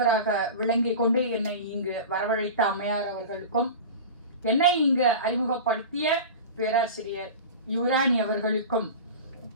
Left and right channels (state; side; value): inverted; both; correlation -0.32